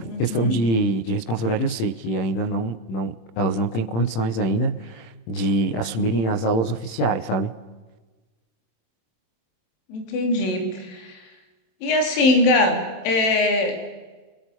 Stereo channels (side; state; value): right; late; 26 ms